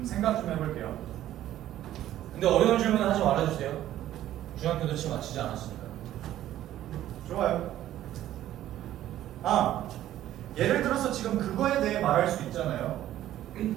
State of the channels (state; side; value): quieter; left; 13.0 dB